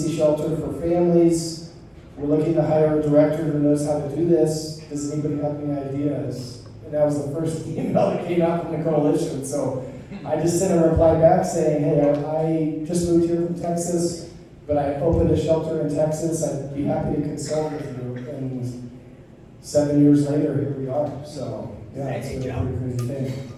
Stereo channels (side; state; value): both; identical; correlation 1.00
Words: shelter for families. We're looking to hire a director who knows how to do this. Does anybody have any ideas? And that was the first email that came out from the coalition. So I just sent a reply back saying, hey, I just moved here from Texas, but I opened a shelter in Texas. I'd be happy to consult with you. And 7 years later, here we are. So, yeah, it's been a pretty crazy thing.